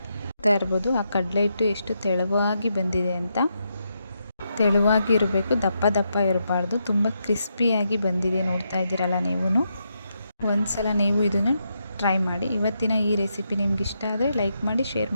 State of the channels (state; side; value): inverted; both; correlation -0.82